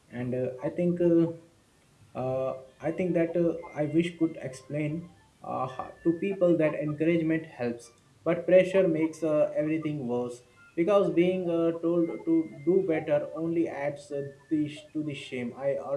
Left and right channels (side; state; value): both; identical; correlation 1.00